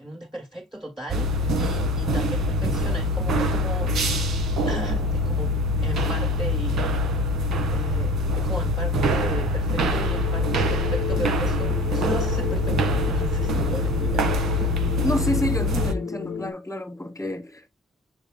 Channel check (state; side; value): normal; both; correlation 0.36